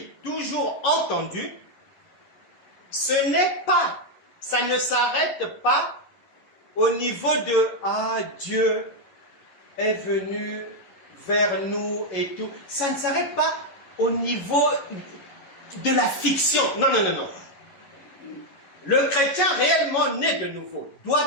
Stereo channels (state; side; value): late; right; 11 ms